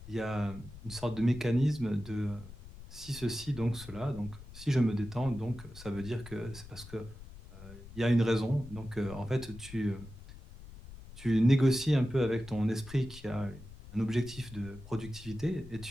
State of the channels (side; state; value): left; noise; rumble, 16 dB below the sound